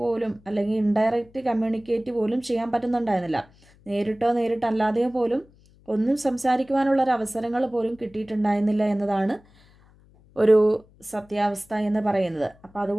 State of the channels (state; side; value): noise; left; hum, 28 dB below the sound